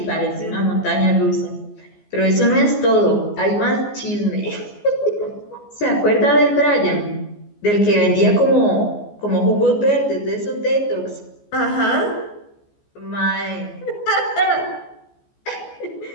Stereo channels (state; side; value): late; right; 14 ms